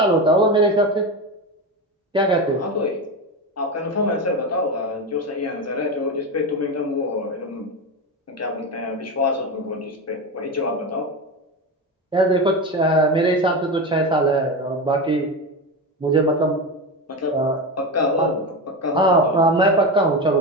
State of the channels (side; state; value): both; normal; correlation 0.19